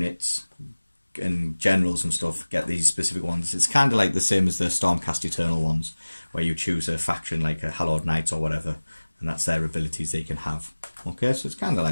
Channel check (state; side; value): inverted; both; correlation -1.00